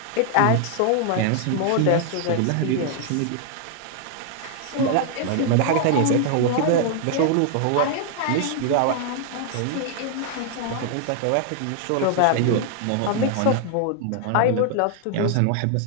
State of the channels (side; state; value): both; different; correlation 0.00